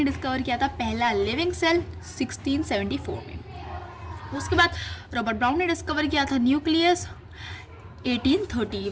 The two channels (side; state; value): both; identical; correlation 1.00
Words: डिस्कवर किया था पहला लिविंग सेल 1674 में। उसके बाद रॉबर्ट ब्राउन ने डिस्कवर किया था न्यूक्लियस